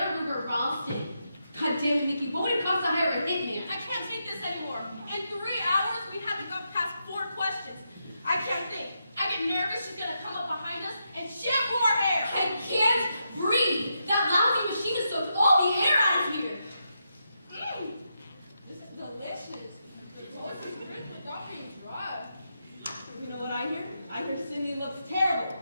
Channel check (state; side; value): inverted; both; correlation -0.84